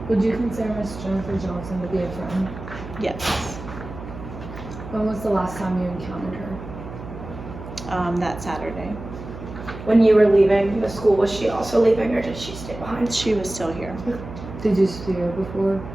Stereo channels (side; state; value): right; noise; hum, 12 dB below the sound